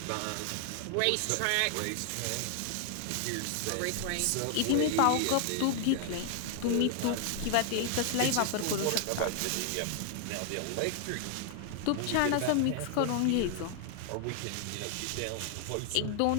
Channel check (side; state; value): both; different; correlation 0.00